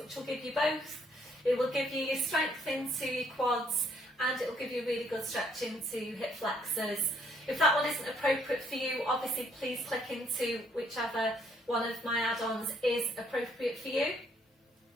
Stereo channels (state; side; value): normal; both; correlation 0.67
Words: will give you both. It will give you your strength into your quads, and it will give you a really good stretch into hip flexors. If that one isn't appropriate for you, obviously please click into whichever one of my add-ons is appropriate for you